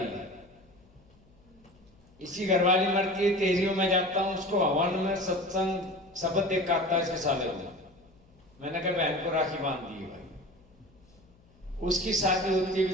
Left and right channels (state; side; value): noise; left; hum, 30 dB below the sound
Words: इसी घरवाली मरती है, तेजियों में जाता हूँ, उसको हवन में सत्संग शब्द देख के आता है इसके साले को। मैंने कहा बहन को राखी बांध दी भाई। उसकी शादी होती है